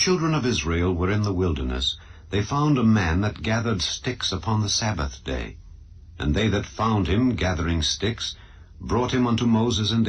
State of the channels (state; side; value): identical; both; correlation 1.00